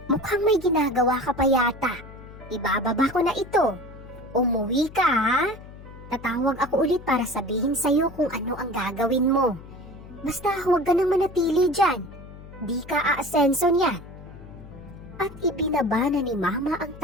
Mukhang may ginagawa ka pa yata. Ibababa ko na ito. Umuwi ka, ha? Tatawag ako ulit para sabihin sa'yo kung ano ang gagawin mo. Basta huwag ka nang manatili dyan. Di ka aasenso niyan. At ibinaba na ni Mama ang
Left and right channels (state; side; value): noise; left; hum, 17 dB below the sound